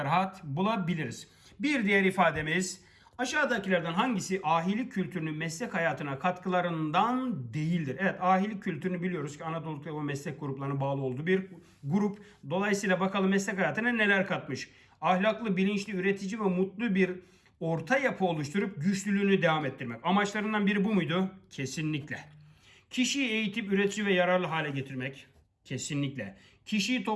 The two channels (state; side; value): identical; both; correlation 1.00